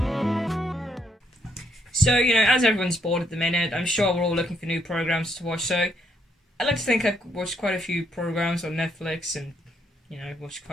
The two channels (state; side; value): normal; both; correlation 0.73